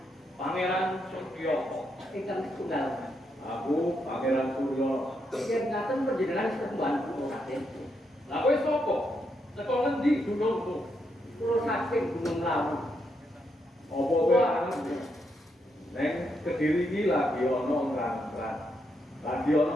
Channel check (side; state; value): both; normal; correlation 0.80